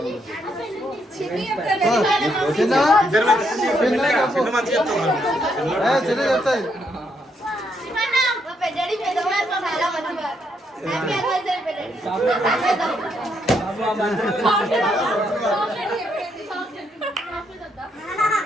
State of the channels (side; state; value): both; normal; correlation 0.76